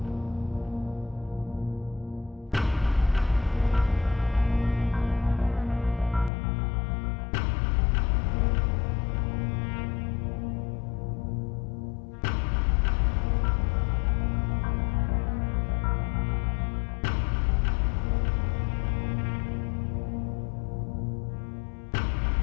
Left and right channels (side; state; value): right; drops out; at 6.3 s